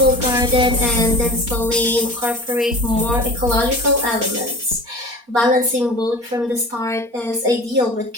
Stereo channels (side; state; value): left; late; 4.3 ms